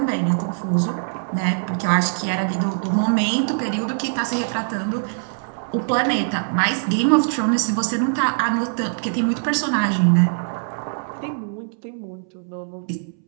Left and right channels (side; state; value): left; silent; 64 dB below the other